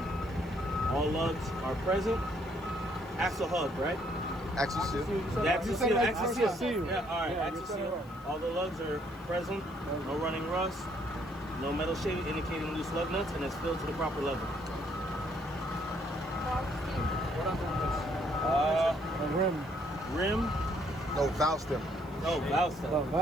All lugs are present. Axle hub, right? Axle seal. The axle seal. like Axle axle seal. seal. Yeah. All right. Yeah, Axle you said it seal. right. All the lugs are present. No running rust. No metal shaving indicating loose lug nuts, and it's filled to the proper level. What I'm doing Uh, The rim. rim. No, valve stem. No, valve The stem.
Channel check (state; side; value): noise; left; hiss, 28 dB below the sound